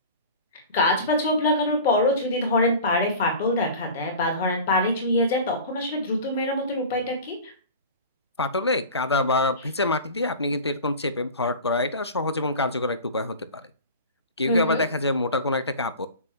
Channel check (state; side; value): inverted; both; correlation -0.36